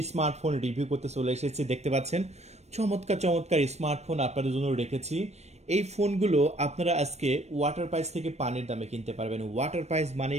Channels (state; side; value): late; left; 0.32 ms